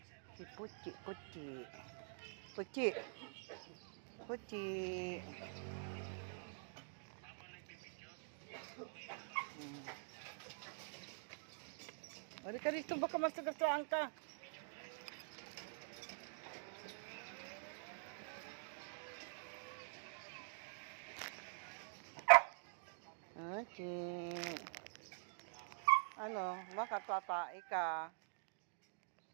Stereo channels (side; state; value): left; silent; digital silence